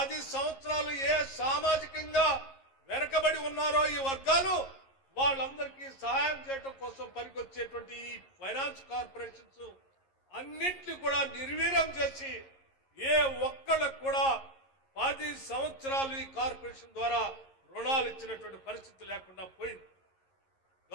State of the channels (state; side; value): late; right; 11 ms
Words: సంవత్సరాలు ఏ సామాజికంగా వెనకబడి ఉన్నారో ఈ వర్గాలు వాళ్ళందరికీ సహాయం చేయడం కోసం పనికొచ్చేటువంటి ఈ ఫైనాన్స్ కార్పొరేషన్స్ అన్నింటినీ కూడా నిర్వీర్యం చేసి ఏ ఒక్కళ్ళకు కూడా 10 సంవత్సరాలు ఈ కార్పొరేషన్ ద్వారా రుణాలు ఇచ్చినటువంటి పరిస్థితి లేకుండా పోయింది.